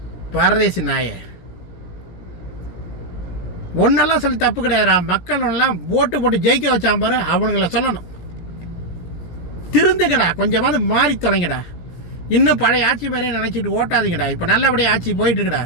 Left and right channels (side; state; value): right; late; 17 ms